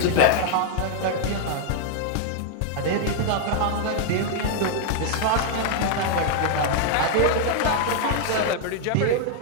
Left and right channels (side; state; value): both; different; correlation 0.00